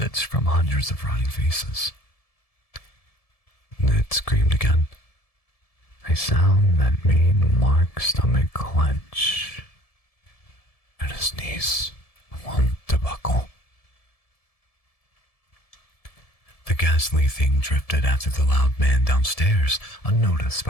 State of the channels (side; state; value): right; late; 1.7 ms